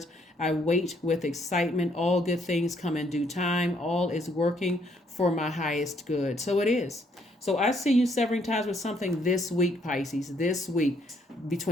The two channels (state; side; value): normal; both; correlation 0.69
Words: I wait with excitement. All good things come in due time. All is working for my highest good. So it is. So I see you severing ties with something this week, Pisces. This week,